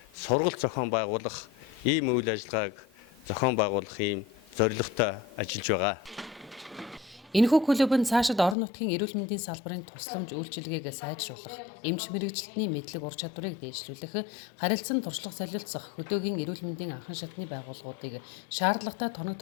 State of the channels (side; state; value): right; drops out; at 8.6 s